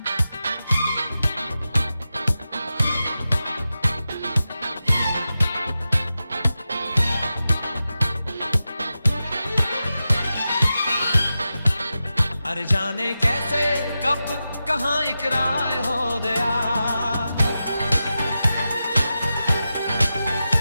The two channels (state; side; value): inverted; both; correlation -0.91